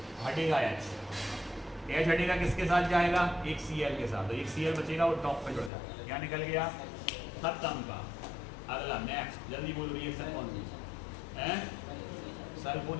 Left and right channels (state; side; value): drops out; right; at 5.7 s